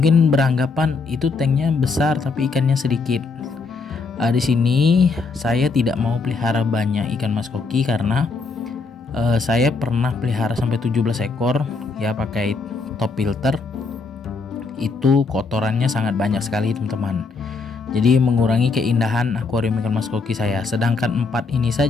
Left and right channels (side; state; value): right; quieter; 4.3 dB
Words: beranggapan itu tanknya besar tapi ikannya sedikit. Di sini saya tidak mau pelihara banyak ikan mas koki karena saya pernah pelihara sampai 17 ekor ya pakai top filter. Itu kotorannya sangat banyak sekali teman-teman. Jadi mengurangi keindahan akuarium ikan mas koki saya. Sedangkan 4 ini